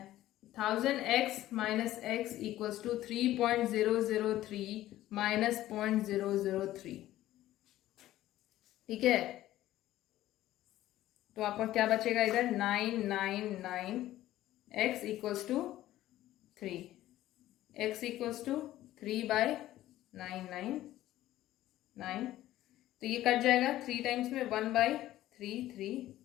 1000x minus x equals to 3.003 minus 0.003। ठीक है, तो आपका क्या बचेगा इधर 999 x equals to 3, x equals to 3/999। तो ये कट जाएगा 3 टाइम्स में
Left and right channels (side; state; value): right; quieter; 14.5 dB